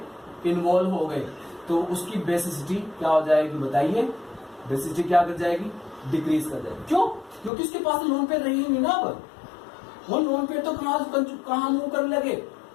हो गए तो उसकी बेसिसिटी क्या हो जाएगी बताइए? बेसिसिटी क्या कर जाएगी? डिक्रीज कर जाएगी। क्यों? क्योंकि उसके पास लोन पेयर रही नहीं ना। अब वो लोन पेयर तो कहां मूव करने लगे,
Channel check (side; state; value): right; drops out; at 7.5 s